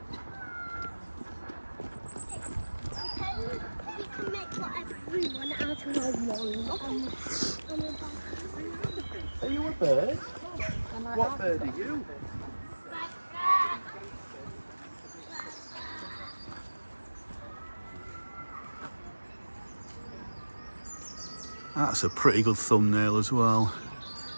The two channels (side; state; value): both; inverted; correlation -1.00